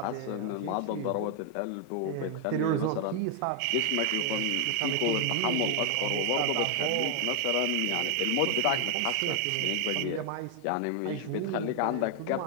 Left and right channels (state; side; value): different; both; correlation 0.00